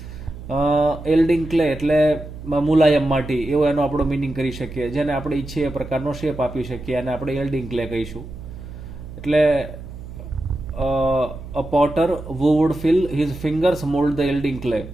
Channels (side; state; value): right; noise; hum, 13 dB below the sound